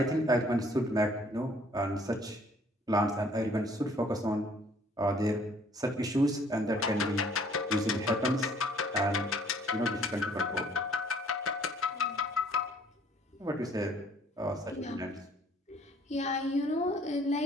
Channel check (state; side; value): normal; both; correlation 0.59